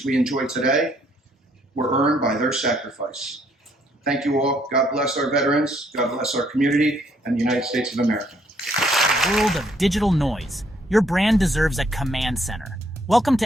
we enjoy today were earned by their sacrifice. Thank you all. God bless our veterans. God bless our community and the United States of America. In a world of digital noise, your brand deserves a command center. Welcome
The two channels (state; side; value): normal; both; correlation 0.68